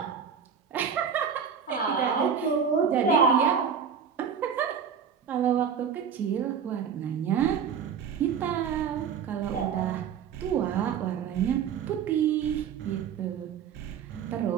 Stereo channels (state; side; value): quieter; left; 7.3 dB